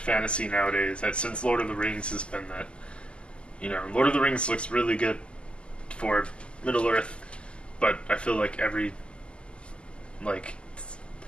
nowadays, since Lord of the Rings has been that You know, Lord of the Rings looks really good for Middle Earth, but I feel like every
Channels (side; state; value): right; late; 0.052 ms